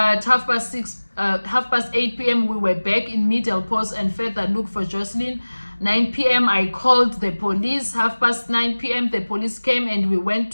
8 p.m, we were back in Meadaples and further look for Jocelyn. 9 p.m, I called the police. 9:30 p.m, the police came and we went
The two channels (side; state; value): both; inverted; correlation -1.00